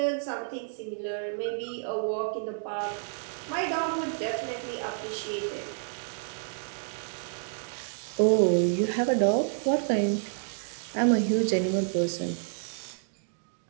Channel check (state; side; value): silent; left; digital silence